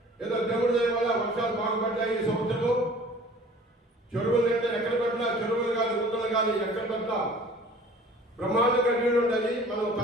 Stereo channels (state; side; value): normal; both; correlation 0.48